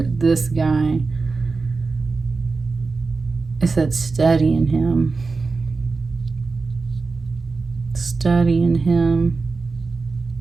this guy. It said studying him. Studying him.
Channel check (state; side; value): quieter; left; 4.1 dB